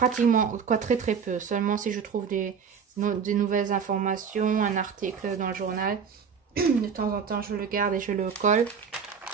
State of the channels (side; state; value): left; quieter; 6.6 dB